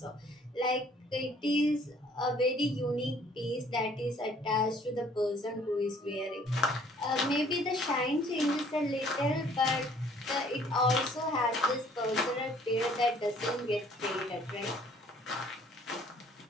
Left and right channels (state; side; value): normal; both; correlation 0.58